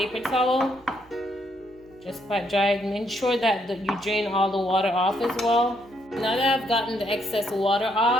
towel. Just pat dry it and ensure that you drain all the water off as well. Now that I've gotten the excess water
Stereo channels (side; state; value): right; noise; hum, 28 dB below the sound